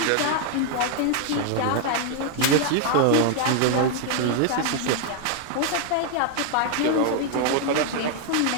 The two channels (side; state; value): both; different; correlation 0.00